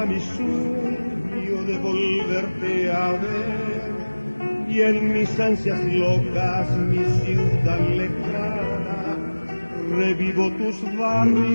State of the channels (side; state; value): both; inverted; correlation -1.00